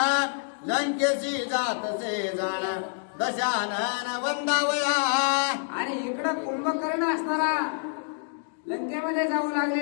लंकेशी जातसे जाण दशानन वंदावया. आणि इकडं कुंभकर्ण असणारा लंकेमध्ये जाऊ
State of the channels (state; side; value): silent; right; digital silence